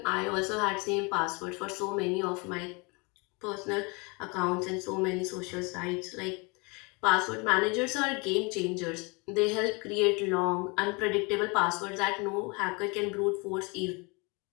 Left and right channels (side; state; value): right; quieter; 29.3 dB